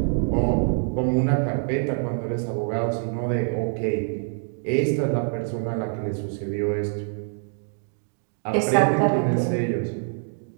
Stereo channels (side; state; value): left; silent; 62 dB below the other